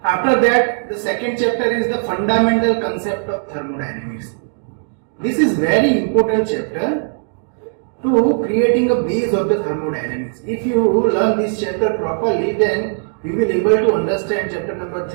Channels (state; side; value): silent; left; digital silence